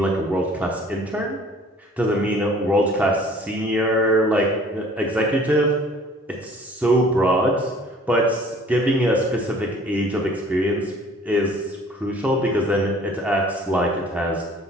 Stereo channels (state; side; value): normal; both; correlation 0.52